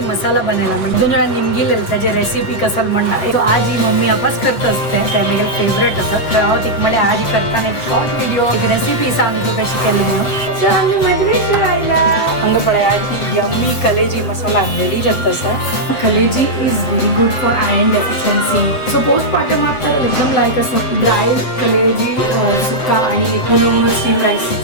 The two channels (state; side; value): late; right; 7.8 ms